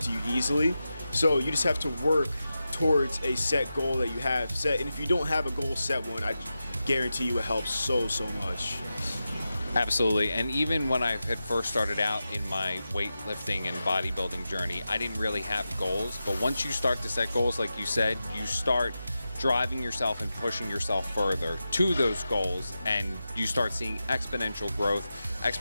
you easily. So you just have to work towards a set goal that you have set. And if you don't have a goal set one, I guarantee you it helps so much. Absolutely. And even when I had first started out in my weightlifting and bodybuilding journey, I didn't really have goals. But once you start to set goals, like you said, you start driving yourself and pushing yourself further to those goals, and you start seeing exponential growth,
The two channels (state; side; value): inverted; both; correlation -0.91